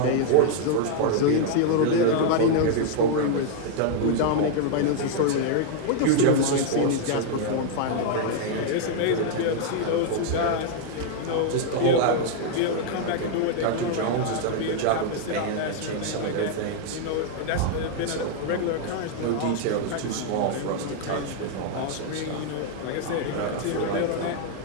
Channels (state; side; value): different; both; correlation 0.00